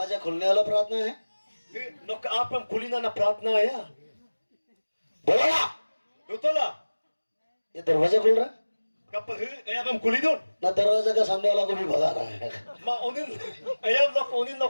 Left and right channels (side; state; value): both; inverted; correlation -1.00